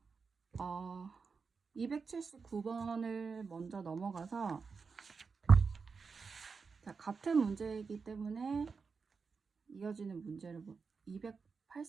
279번을 먼저 넘어가서, 자, 같은 문제이기 때문에 이어지는 문제를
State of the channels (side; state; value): left; quieter; 5.1 dB